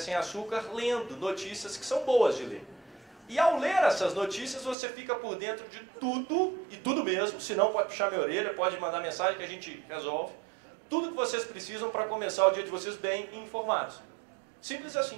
açúcar, lendo notícias que são boas de ler. E ao ler essas notícias, você fica por dentro de tudo, e tudo mesmo, se não pode puxar minha orelha, pode mandar mensagem que a gente resolve. Tudo que vocês precisam para começar o dia de vocês bem informados. Simples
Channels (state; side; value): drops out; left; at 4.8 s